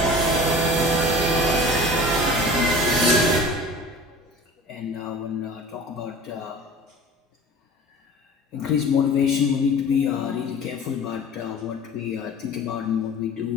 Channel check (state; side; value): normal; both; correlation 0.40